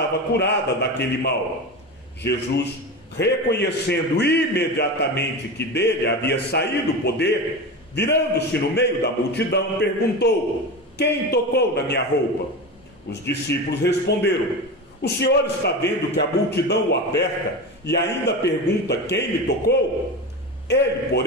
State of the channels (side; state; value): both; normal; correlation 0.24